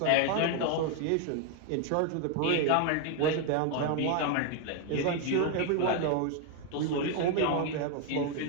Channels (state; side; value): different; both; correlation 0.01